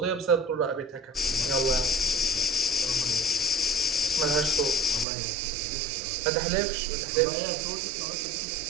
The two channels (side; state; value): left; drops out; at 5.1 s